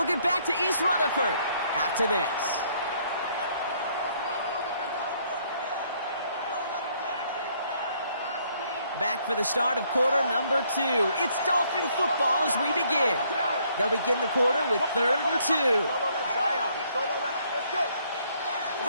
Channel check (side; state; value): both; inverted; correlation -0.67